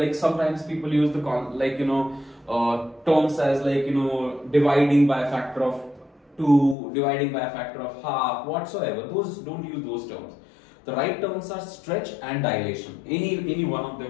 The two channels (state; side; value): drops out; right; at 6.8 s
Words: sometimes people use the terms as like, dividing by a factor of 2, dividing by a factor of half, whatsoever. Those, don't use those terms. The right terms are stretch and dilation. Any one of